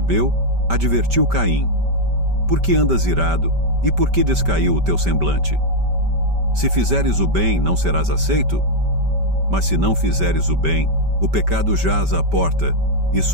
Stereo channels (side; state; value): left; late; 5.1 ms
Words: advertiu Caim: por que andas irado, e por que descaiu o teu semblante? Se fizeres o bem, não serás aceito? Mas se não fizeres o bem, o pecado jaz à porta, e